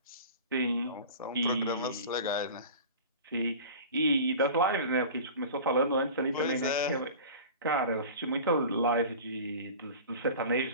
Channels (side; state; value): both; inverted; correlation -0.37